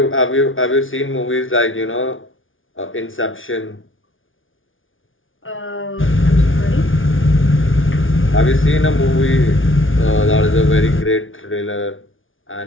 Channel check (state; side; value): late; right; 0.57 ms